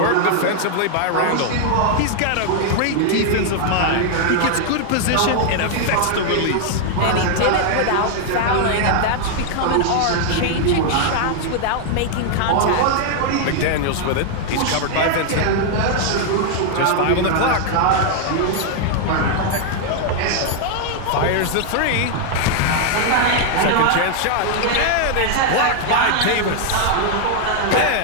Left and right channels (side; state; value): both; different; correlation 0.00